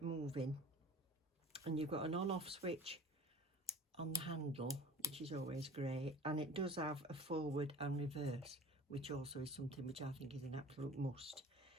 moving. And you've got an on-off switch on the handle, which is always great, and it does have a forward and reverse, which also is something which I think is an absolute must.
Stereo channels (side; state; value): both; normal; correlation 0.43